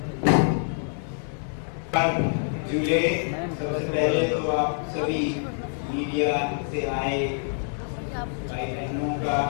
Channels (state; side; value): silent; right; 61 dB below the other